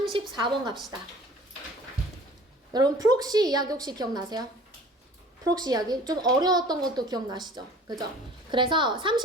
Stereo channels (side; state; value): both; normal; correlation 0.47